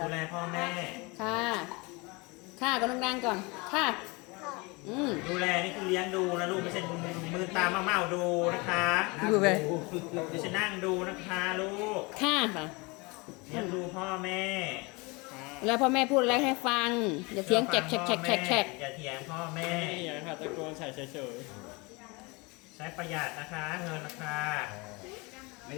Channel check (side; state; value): right; quieter; 26.9 dB